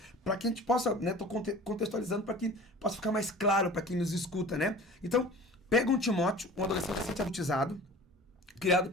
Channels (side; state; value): both; normal; correlation 0.42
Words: para que a gente possa, né, tô contextualizando para que possa ficar mais claro para quem nos escuta, né? Então, pega um Timóteo, um adolescente adultizado, criado